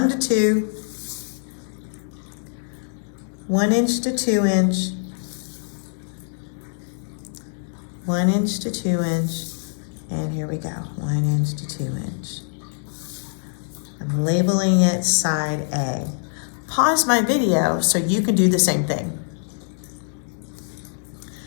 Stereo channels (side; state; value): right; silent; digital silence